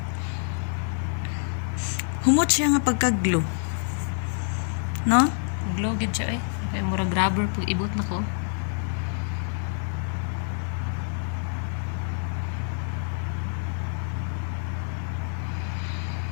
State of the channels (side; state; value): right; silent; 60 dB below the other